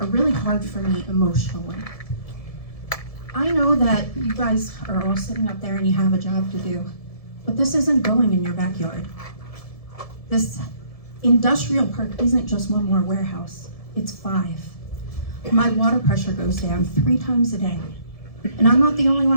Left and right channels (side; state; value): right; late; 1.7 ms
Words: are really hard for me emotionally. I know that you guys are all sitting up there and you have a job to do, but this isn't going in your backyard. This industrial park isn't just one more warehouse, it's 5. My water pressure goes down 3 times a day. And I'm not the only